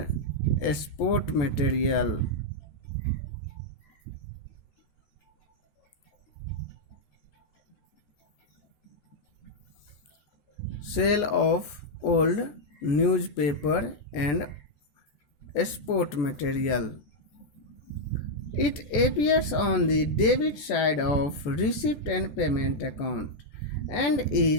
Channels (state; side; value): late; right; 14 ms